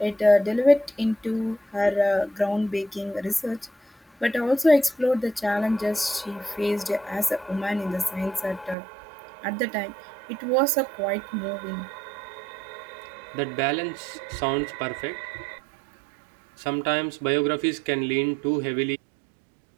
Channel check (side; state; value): left; drops out; at 8.8 s